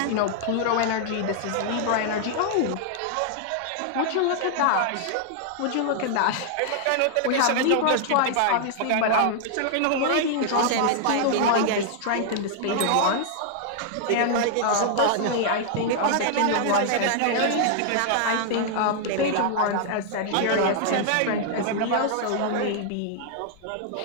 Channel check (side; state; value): both; different; correlation 0.00